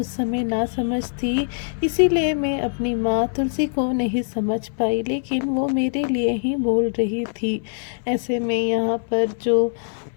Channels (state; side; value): silent; right; 63 dB below the other